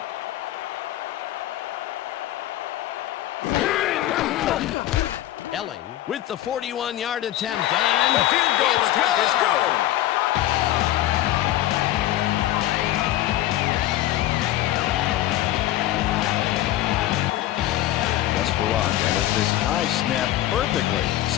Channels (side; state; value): right; quieter; 14.3 dB